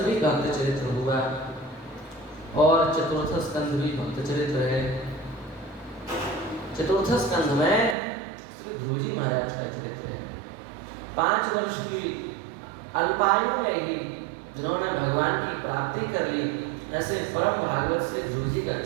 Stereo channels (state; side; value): drops out; left; at 8.0 s